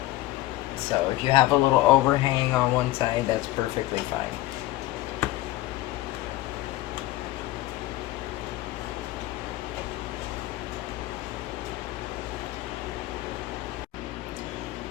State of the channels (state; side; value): quieter; right; 17.1 dB